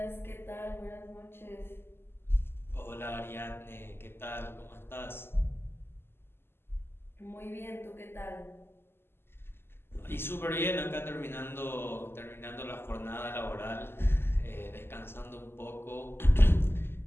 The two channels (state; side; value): late; right; 0.11 ms